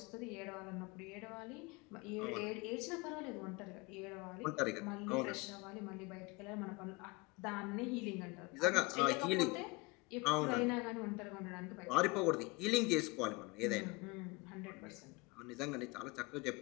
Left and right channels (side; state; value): right; quieter; 25.1 dB